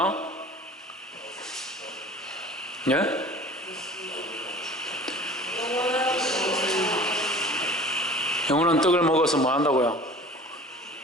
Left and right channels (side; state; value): both; normal; correlation 0.44